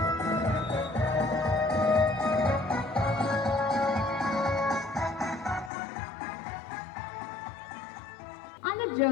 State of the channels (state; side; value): drops out; right; at 5.7 s